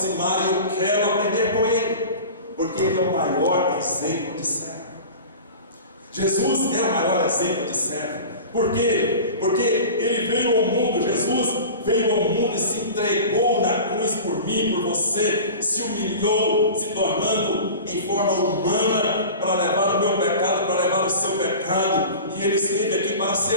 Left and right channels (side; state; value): both; inverted; correlation -0.35